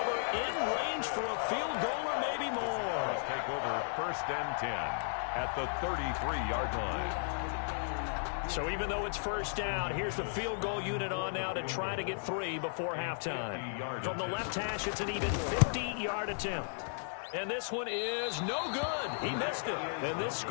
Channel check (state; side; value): silent; right; 54 dB below the other